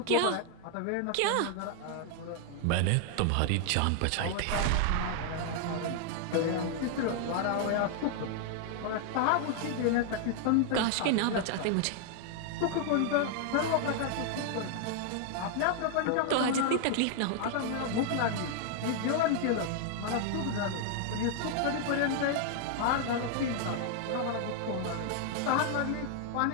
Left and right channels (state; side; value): different; both; correlation 0.00